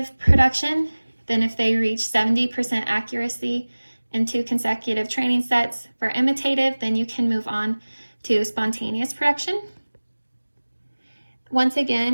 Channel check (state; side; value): inverted; both; correlation -1.00